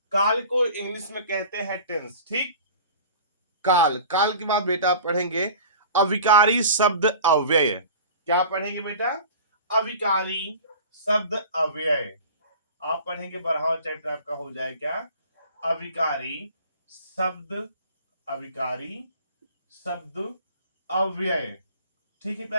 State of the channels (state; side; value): inverted; both; correlation -0.41